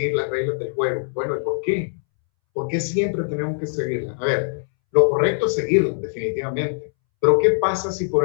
las reglas del juego. Bueno, ¿y por qué? ¿Por qué siempre tenemos que seguirlas? A ver, lo correcto es seguirlas, definitivamente. Pero ¿qué pasa si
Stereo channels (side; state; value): right; silent; 64 dB below the other